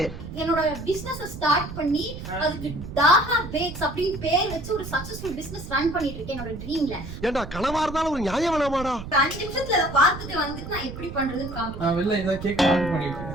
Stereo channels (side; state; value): right; noise; rumble, 10 dB below the sound